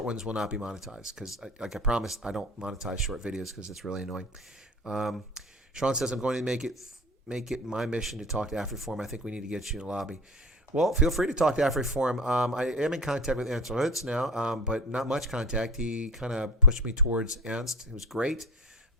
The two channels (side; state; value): both; normal; correlation 0.34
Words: ones will not be monetized because, like I promised, I don't monetize short videos because it's really annoying. Sean says, I'm going to make it my mission to talk to AfriForum. I think we need to get you in the lobby. Well, feel free to talk to AfriForum. I am in contact with Ernst Hutz now, but not much contact. He kind of pushed me towards Ernst. It was great,